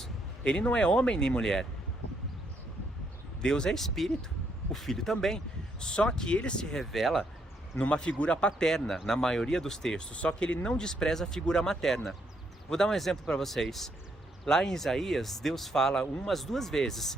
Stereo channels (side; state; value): both; normal; correlation 0.74